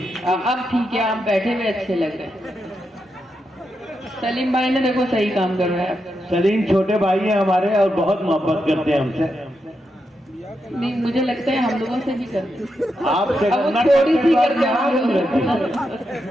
अब ठीक है, आप बैठे हुए अच्छे लग रहे हैं। सलीम भाई ने देखो सही काम कर रहा है। सलीम छोटे भाई हैं हमारे और बहुत मोहब्बत करते हैं हमसे। नहीं, मुझे लगता है हम लोगों से भी करते। आपसे अब वो करना थोड़ी सी करते करते हैं।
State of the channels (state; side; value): normal; both; correlation 0.85